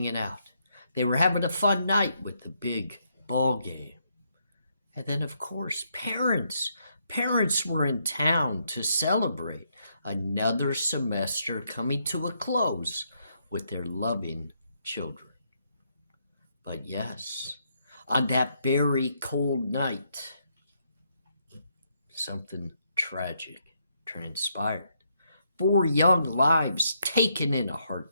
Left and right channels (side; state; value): both; inverted; correlation -0.76